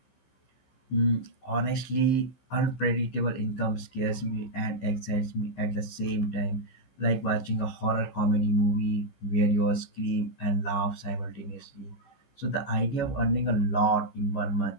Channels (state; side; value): late; right; 15 ms